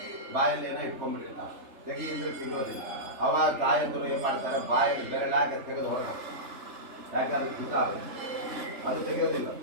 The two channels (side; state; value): left; late; 3.3 ms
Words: ಬಾಯಲ್ಲಿ ಏನೋ ಇಟ್ಕೊಂಡ್ಬಿಟ್ಟಿರ್ತಾವೆ, ತೆಗಿ ಅಂದ್ರೆ ತೆಗೋದಿಲ್ಲ. ಅವಾಗ ತಾಯಂದರು ಏನು ಮಾಡ್ತಾರೆ, ಬಾಯಲ್ಲಿ ಬೆರಳಾಗಿ ತೆಗೆದು ಹೊರಗೆ, ಯಾಕೆ ಅದು ಹಿತ ಅದು ತೆಗೆಯೋದಿಲ್ಲ